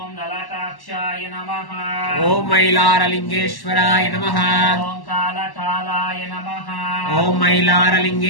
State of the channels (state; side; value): late; right; 1.1 ms